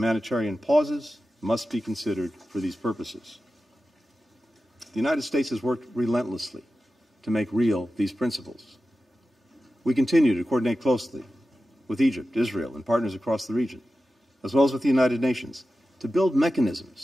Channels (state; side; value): normal; both; correlation 0.93